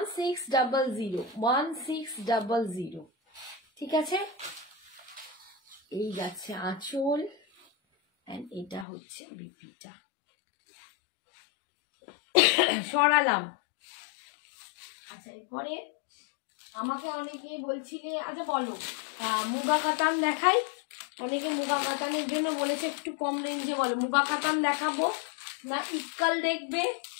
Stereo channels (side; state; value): right; drops out; at 8.8 s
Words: ঠিক আছে। এই যাচ্ছে আঁচল, এন্ড এটা হচ্ছে বিপিটা। সরালাম। আচ্ছা এরপরে আমাকে অনেকে বলছিলে, আচ্ছা বলো মুগা কাতান দেখাই। অনেকে মুগা কাতানের জন্য বলেছে একটু কম রেঞ্জে, বলো মুগা কাতান দেখাবো না ইক্কাল দেখবে